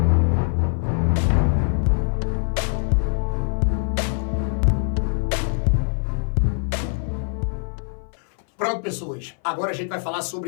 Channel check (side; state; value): right; silent; 59 dB below the other